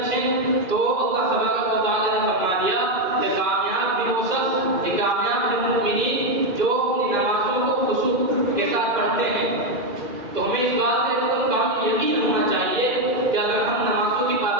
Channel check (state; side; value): late; left; 2.4 ms